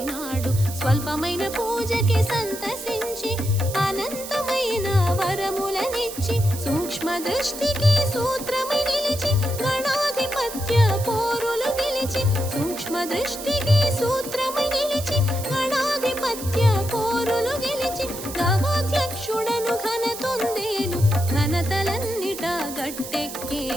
స్వల్పమైన పూజకి సంతసించి అనంతమైన వరములనిచ్చి, సూక్ష్మ దృష్టికి సూత్రమై నిలిచి గణాధిపత్య పోరులు గెలిచి, సూక్ష్మ దృష్టికి సూత్రమై నిలిచి గణాధిపత్య పోరులు గెలిచి, గవాధ్యక్షుడను ఘనతొందేను, ఘనతలన్నిట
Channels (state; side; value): noise; right; hiss, 10 dB below the sound